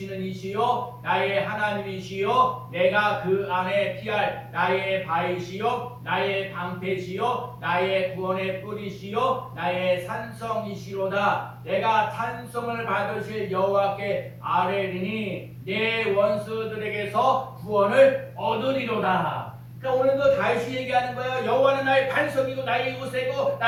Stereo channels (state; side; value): identical; both; correlation 1.00